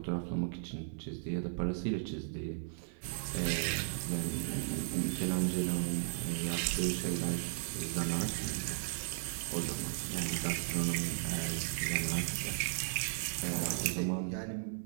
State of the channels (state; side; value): silent; left; digital silence